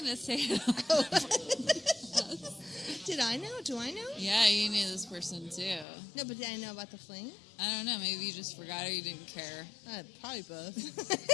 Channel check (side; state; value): right; drops out; at 5.9 s